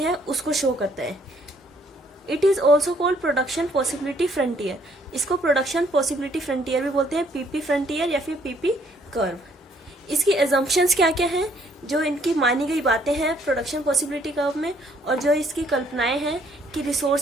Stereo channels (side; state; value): both; normal; correlation 0.66